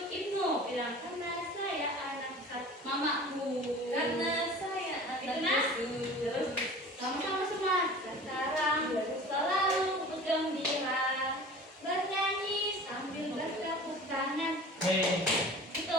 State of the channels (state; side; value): normal; both; correlation 0.41